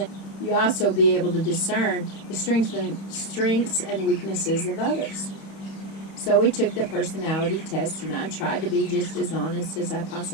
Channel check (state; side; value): late; right; 31 ms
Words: you also be able to discern the strengths and weaknesses of others. So we took the personality test, and I tried to be just as honest as I